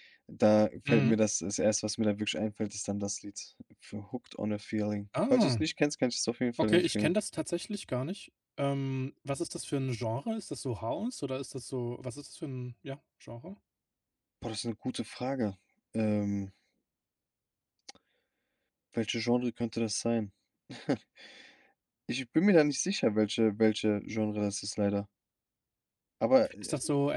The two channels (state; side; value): identical; both; correlation 1.00